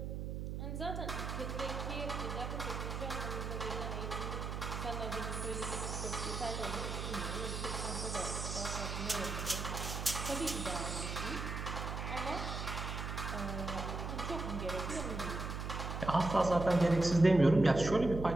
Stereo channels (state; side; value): noise; right; hum, 4 dB below the sound